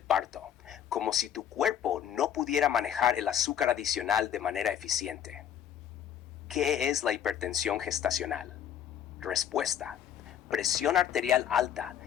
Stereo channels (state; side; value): quieter; right; 9.5 dB